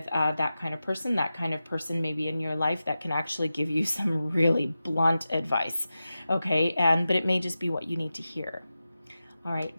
that kind of person may be in your life that can actually give you some really blunt advice, okay? But it may just be what you need to hear. All right,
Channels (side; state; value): both; inverted; correlation -0.93